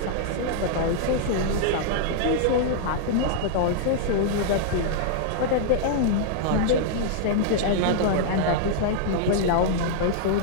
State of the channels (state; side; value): different; both; correlation -0.01